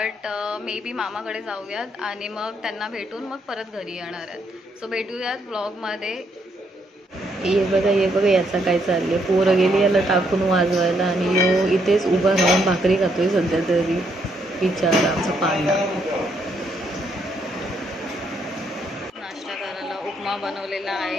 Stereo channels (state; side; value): normal; both; correlation 0.74